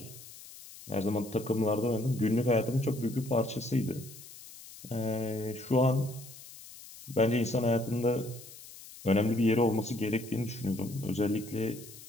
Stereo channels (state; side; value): noise; left; hiss, 17 dB below the sound